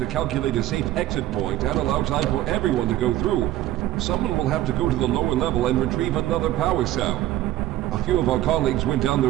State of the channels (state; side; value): quieter; left; 14.6 dB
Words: calculate a safe exit point and allow time for everyone to go through, someone will have to go to the lower level and retrieve another power cell. A few of our colleagues went down